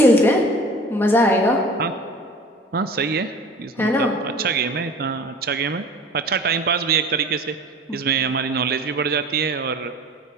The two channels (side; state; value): both; normal; correlation 0.42